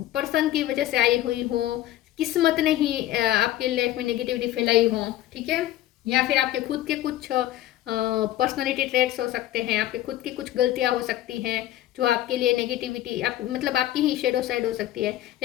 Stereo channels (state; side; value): quieter; right; 13.9 dB